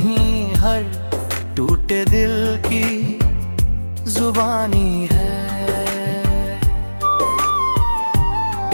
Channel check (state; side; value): inverted; both; correlation -1.00